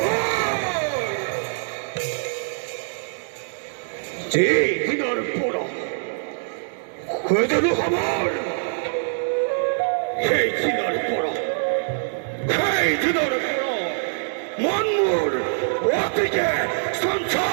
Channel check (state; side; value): silent; left; 63 dB below the other